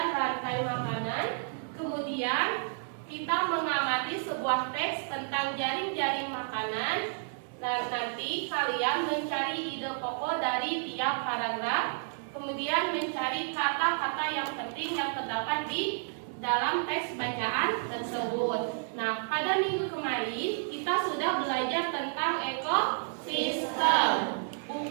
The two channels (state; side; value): silent; left; digital silence